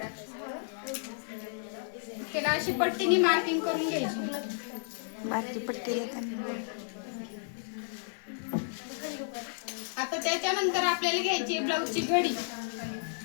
त्याला अशी पट्टीने मार्किंग करून घ्यायची बारकी पट्टी आता त्याच्यानंतर आपल्याला घ्यायची ब्लाऊजची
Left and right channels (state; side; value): silent; right; 56 dB below the other